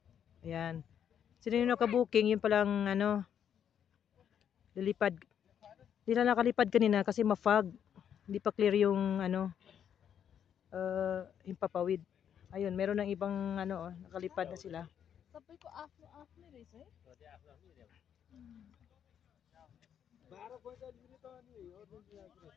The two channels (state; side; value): quieter; right; 8.8 dB